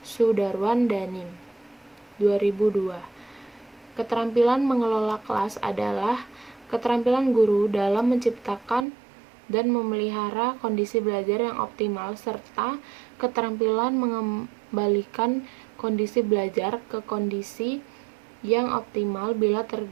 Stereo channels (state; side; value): drops out; left; at 8.8 s